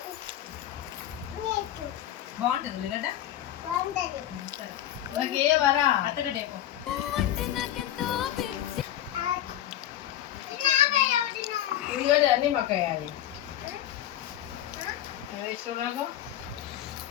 బాగుంటుంది ఉల్లిగడ్డ. అత్తగడ్డ ఉల్లిగడ్డ అన్నీ మాకు వేయాలి. వేస్తున్నాను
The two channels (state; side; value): quieter; right; 12.3 dB